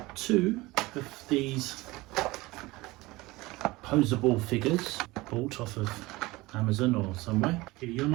two of these posable figures bought off of Amazon or somewhere. You're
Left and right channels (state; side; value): quieter; left; 20.9 dB